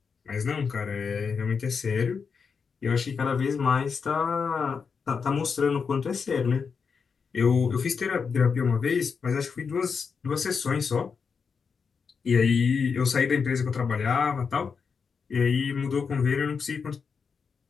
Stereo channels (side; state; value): right; quieter; 5.7 dB